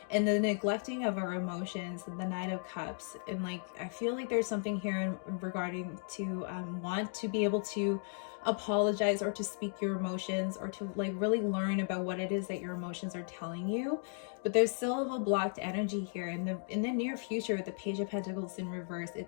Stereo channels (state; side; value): silent; right; 54 dB below the other